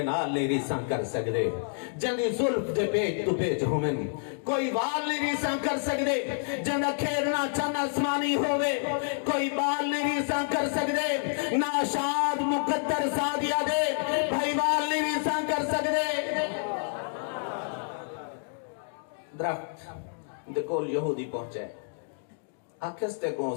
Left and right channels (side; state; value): right; silent; digital silence